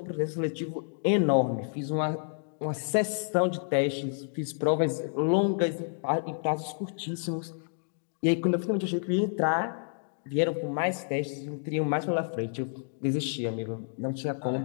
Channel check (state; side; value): silent; right; digital silence